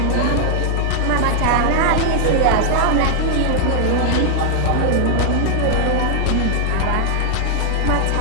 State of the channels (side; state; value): both; different; correlation 0.00